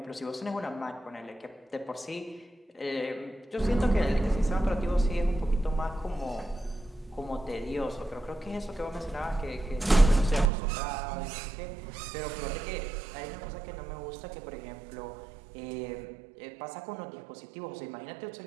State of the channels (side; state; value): left; drops out; at 10.5 s